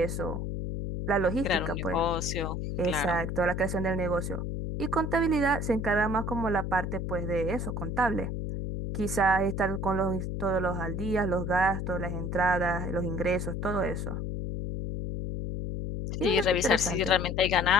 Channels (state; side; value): noise; left; hum, 3 dB below the sound